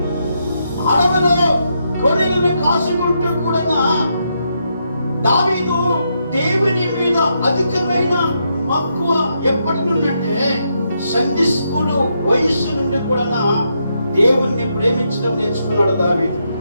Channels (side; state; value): both; inverted; correlation -0.80